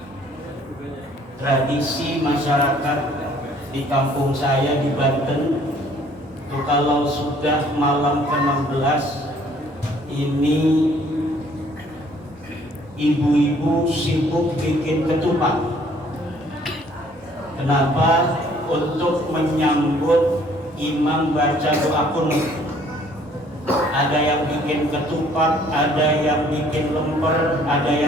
Tradisi masyarakat di kampung saya di Banten itu kalau sudah malam ke-16 ini ibu-ibu sibuk bikin ketupat. Kenapa? Untuk menyambut imam baca doa kunut. Ada yang bikin ketupat, ada yang bikin lemper, ada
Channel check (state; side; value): normal; both; correlation 0.59